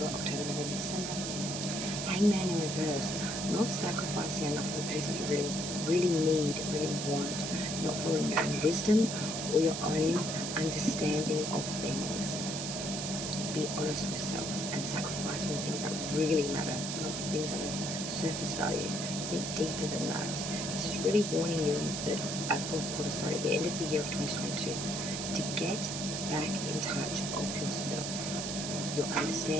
October, November, December. Hangman in reverse, not sacrificing enough for the things that you really need, really want, not following your own wisdom or your own understanding of things. Be honest with self and sacrifice for the things that really matter, not the things that are surface value. Think deeper than that. This is really warning you in the fourth quarter, at the end of the year of 2022, to get back in touch of yourself, your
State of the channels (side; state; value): right; noise; hiss, 4 dB below the sound